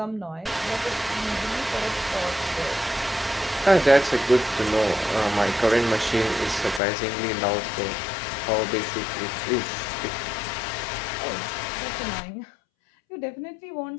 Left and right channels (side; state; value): right; drops out; at 6.8 s